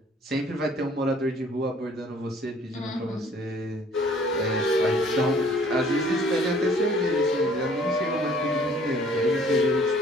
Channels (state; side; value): normal; both; correlation 0.56